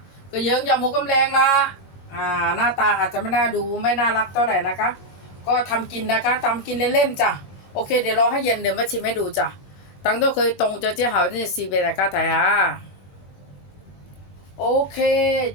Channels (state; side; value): late; right; 21 ms